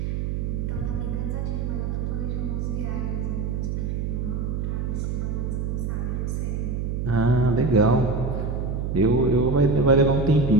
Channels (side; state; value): right; noise; hum, 1 dB below the sound